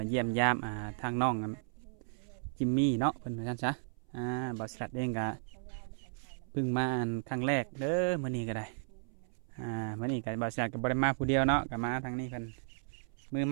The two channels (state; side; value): silent; left; 55 dB below the other